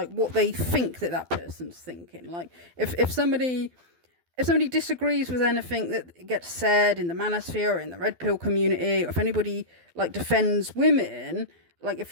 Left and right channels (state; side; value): late; left; 12 ms